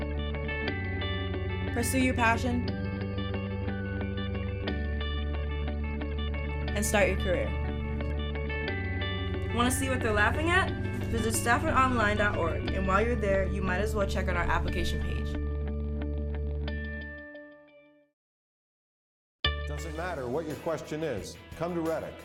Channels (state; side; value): identical; both; correlation 1.00